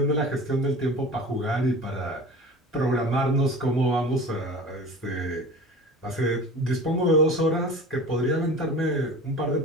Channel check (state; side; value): normal; both; correlation 0.37